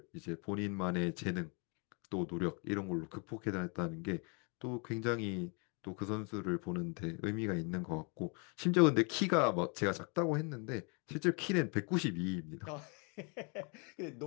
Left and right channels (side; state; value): right; quieter; 34.5 dB